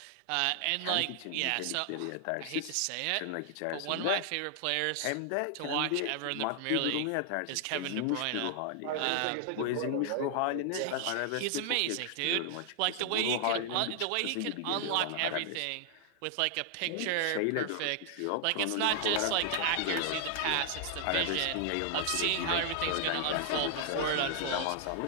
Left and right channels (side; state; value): both; different; correlation 0.00